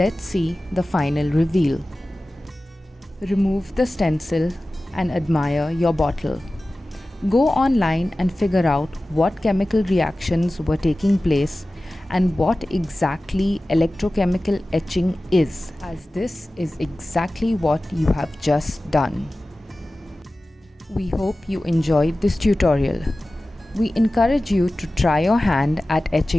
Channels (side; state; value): both; normal; correlation 0.96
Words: see the final reveal. Remove the stencil and admire your bottle. Go online and figure out what chemical reactions were taking place and what exactly electrochemical etching is, as this is exactly what you have just done. We hope you enjoyed this tutorial. We encourage you to try your hand at